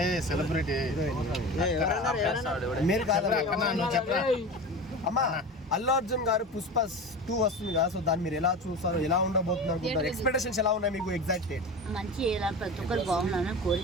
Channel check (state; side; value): normal; both; correlation 0.30